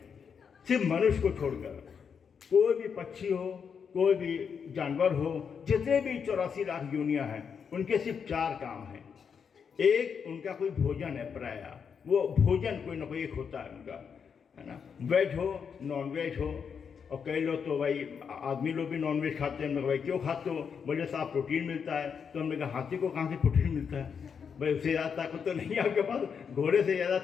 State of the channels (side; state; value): right; quieter; 6.7 dB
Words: सिर्फ मनुष्य को छोड़कर, कोई भी पक्षी हो, कोई भी जानवर हो, जितने भी 84 लाख योनियां हैं, उनके सिर्फ 4 काम हैं। एक, उनका कोई भोजन है, प्राय वो भोजन कोई ना कोई एक होता है उनका, है ना। वेज हो, नॉन वेज हो। और कई लोग तो भाई आदमी लोग भी नॉन वेज खाते हैं। भाई क्यों खाते हो? बोले साहब प्रोटीन मिलता है। तो हमने कहा हाथी को कहाँ से प्रोटीन मिलता है? भाई उससे ज़्यादा ताकत तो नहीं है आपके पास, घोड़े से ज़्यादा